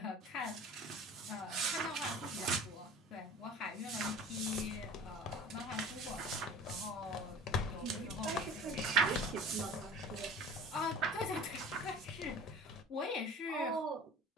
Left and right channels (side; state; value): both; normal; correlation 0.41